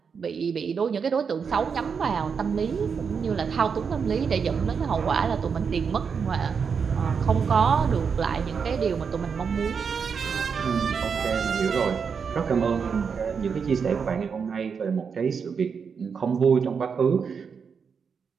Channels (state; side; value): quieter; left; 6.1 dB